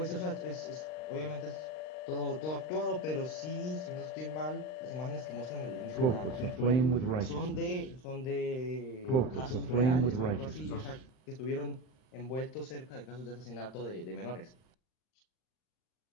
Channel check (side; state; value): right; late; 39 ms